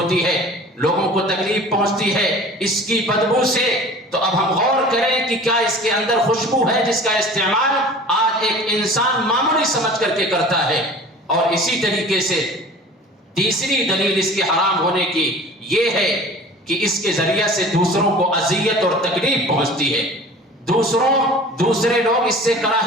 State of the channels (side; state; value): both; normal; correlation 0.42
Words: ہے، لوگوں کو تکلیف پہنچتی ہے اس کی بدبو سے۔ تو اب ہم غور کریں کہ کیا اس کے اندر خوشبو ہے جس کا استعمال آج ایک انسان معمولی سمجھ کر کے کرتا ہے۔ اور اسی طریقے سے تیسری دلیل اس کے حرام ہونے کی یہ ہے کہ اس کے ذریعہ سے دوسروں کو اذیت اور تکلیف پہنچتی ہے، دوسرے لوگ اس سے